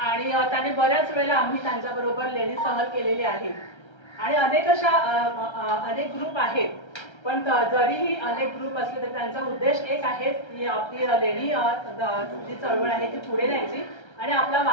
त्याने बऱ्याच वेळेला आम्ही त्यांच्याबरोबर लेणी सहल केलेली आहे आणि अनेक ग्रुप आहेत. पण जरीही अनेक ग्रुप असले तरी त्यांचा उद्देश एक आहे की आपली लेणी जी चळवळ आहे ती पुढे न्यायची आणि आपला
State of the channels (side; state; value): right; late; 1.3 ms